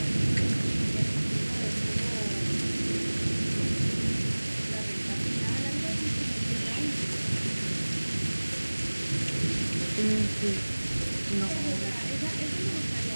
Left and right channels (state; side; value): inverted; both; correlation -1.00